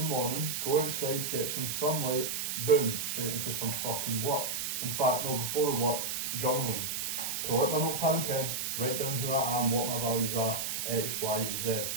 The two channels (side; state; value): right; noise; hiss, 2 dB below the sound